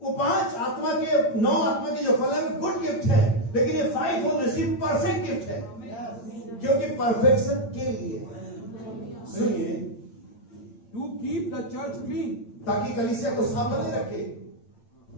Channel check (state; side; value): late; right; 8.8 ms